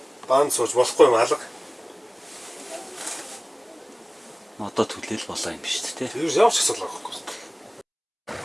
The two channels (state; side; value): identical; both; correlation 1.00